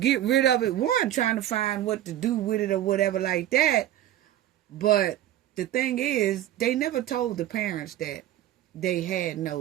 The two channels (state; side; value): quieter; left; 12.8 dB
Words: rid of it. One, trying to find what to do with it or whatever like that. But the thing is, they never told the parents that they had